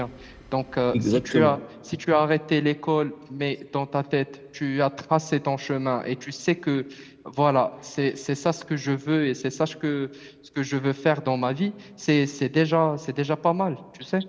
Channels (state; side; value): identical; both; correlation 1.00